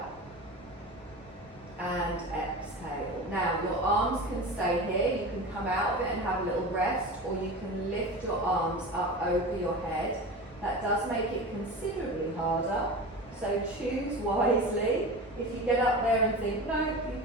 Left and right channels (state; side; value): normal; both; correlation 0.30